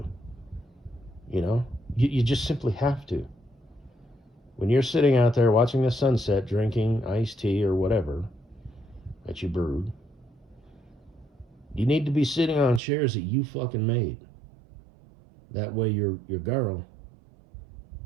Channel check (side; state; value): left; drops out; at 12.8 s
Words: you just simply have to. When you're sitting out there watching the sunset, drinking iced tea or whatever that you brewed, you need to be sitting on chairs that you fucking made. That way your girl,